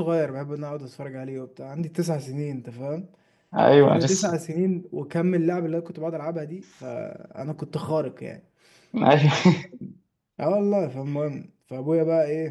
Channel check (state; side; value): identical; both; correlation 1.00